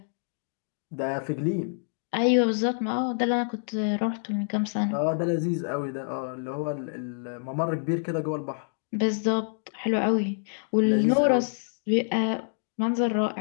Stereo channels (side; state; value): right; silent; digital silence